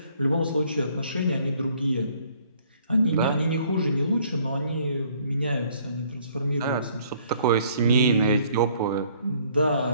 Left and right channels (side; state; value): both; inverted; correlation -0.61